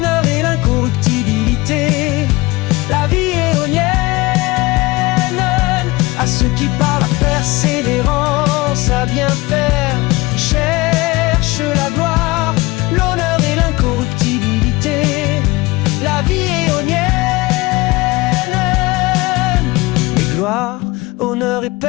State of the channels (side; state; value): right; quieter; 21.7 dB